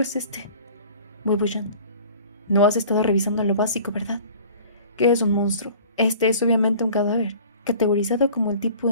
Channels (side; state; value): both; inverted; correlation -0.47